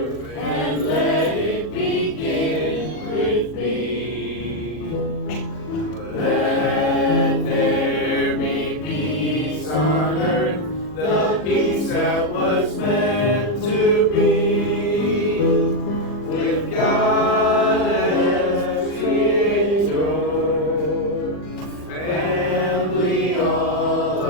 and let it begin with me. Let there be peace on earth, the peace that was meant to be, with God as Creator, family all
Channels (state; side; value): late; right; 40 ms